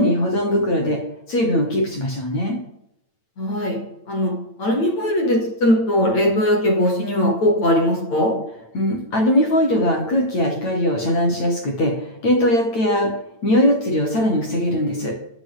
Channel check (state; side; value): late; right; 8.9 ms